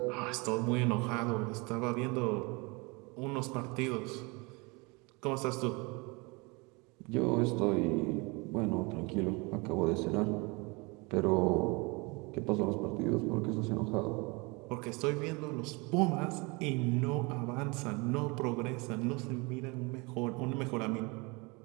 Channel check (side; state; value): left; quieter; 27.8 dB